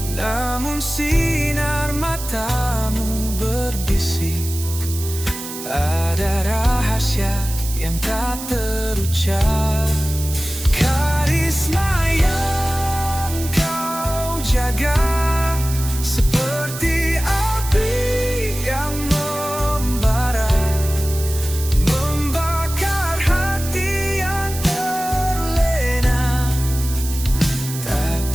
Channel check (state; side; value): noise; right; hiss, 10 dB below the sound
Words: Namun sinar matamu berbisik, ada rahasia yang tak terucap. Karisma yang kau jaga seperti api yang membara, membakar